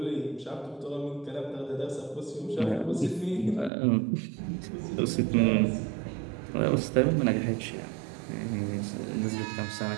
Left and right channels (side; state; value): left; drops out; at 3.7 s